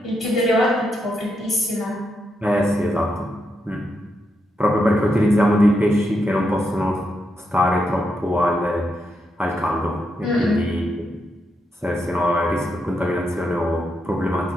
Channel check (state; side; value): normal; both; correlation 0.82